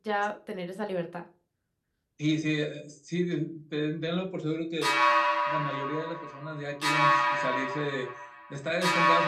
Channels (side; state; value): both; identical; correlation 1.00